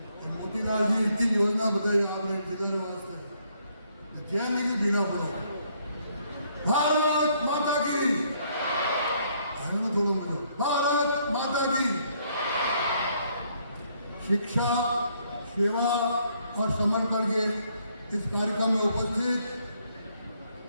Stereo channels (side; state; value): both; inverted; correlation -0.69